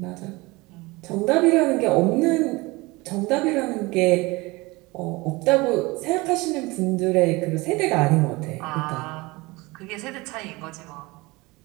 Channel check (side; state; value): left; quieter; 23.1 dB